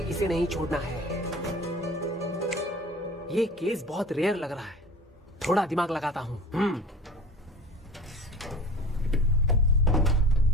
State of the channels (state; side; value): normal; both; correlation 0.40